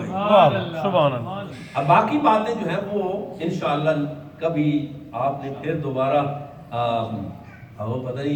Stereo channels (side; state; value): both; identical; correlation 1.00